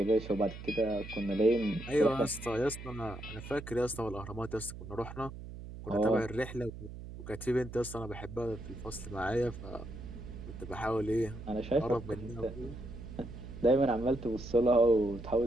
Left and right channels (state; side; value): noise; right; hum, 12 dB below the sound